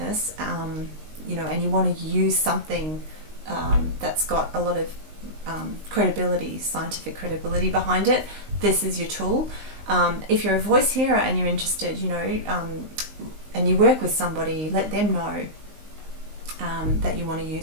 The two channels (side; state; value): left; late; 19 ms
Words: and you want to use something that's got a lot of credibility, scientific credibility behind it, this is your tool. If you're a voice hearer and you're interested, and you work with somebody, let them know that you want to